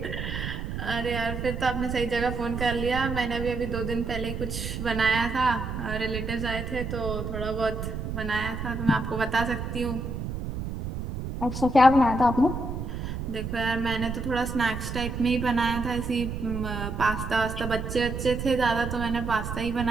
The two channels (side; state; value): right; noise; rumble, 5 dB below the sound